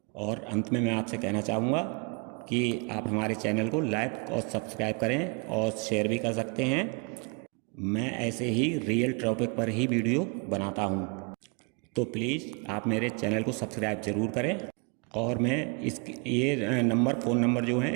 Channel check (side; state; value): left; quieter; 33.3 dB